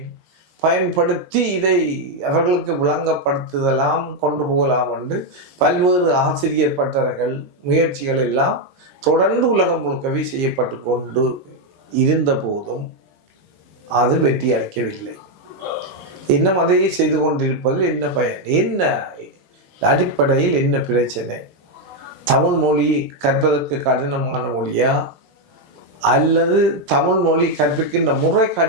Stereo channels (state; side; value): late; left; 20 ms